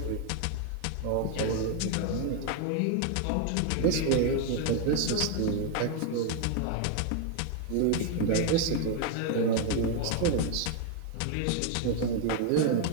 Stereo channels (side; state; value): both; different; correlation 0.00